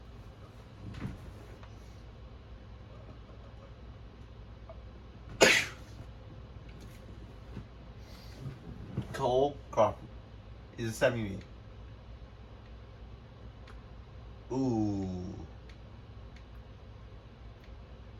Cole Crawford is a 70. Ooh.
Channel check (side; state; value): both; identical; correlation 1.00